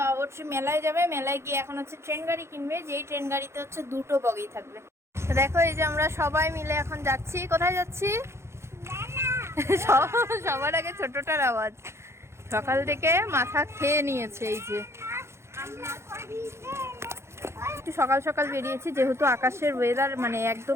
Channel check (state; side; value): late; left; 0.13 ms